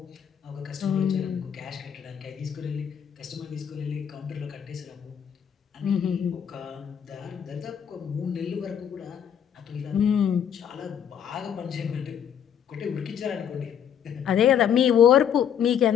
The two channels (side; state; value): right; quieter; 8.7 dB